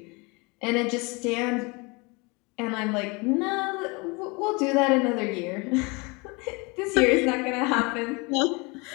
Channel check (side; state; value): right; quieter; 28.0 dB